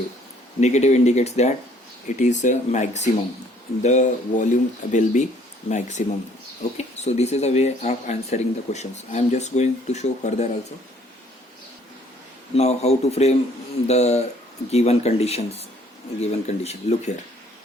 Negative indicates that it is a maximum. The volume will be maximum. Okay, so this is a way of answering the questions. I am just going to show further also. Now how to frame the given conditions. Look here.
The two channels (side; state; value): both; normal; correlation 0.60